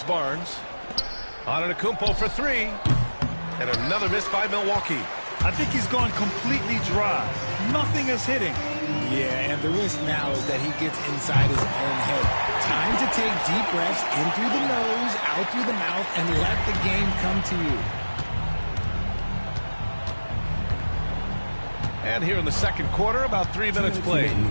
Barnes. Antetokounmpo for 3. And another miss by Milwaukee. I think he's gone completely dry. Nothing is hitting. Yeah, and the risk now is that he gets inside his own head. Time to take deep breaths in through the nose, out through the mouth, and let the game come to you. And here in the second quarter, about 3 minutes played.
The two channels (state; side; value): inverted; both; correlation -1.00